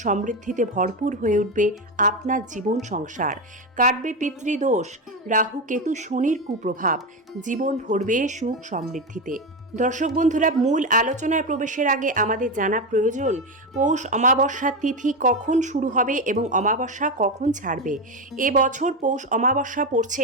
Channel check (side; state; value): both; normal; correlation 0.14